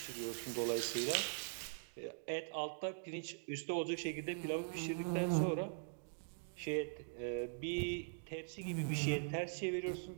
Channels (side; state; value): left; silent; digital silence